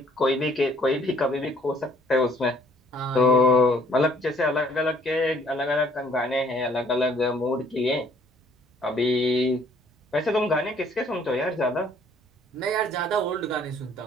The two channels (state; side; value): normal; both; correlation 0.60